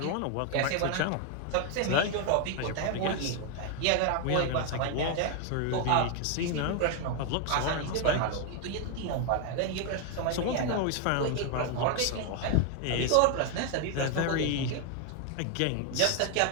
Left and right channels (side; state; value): both; different; correlation 0.01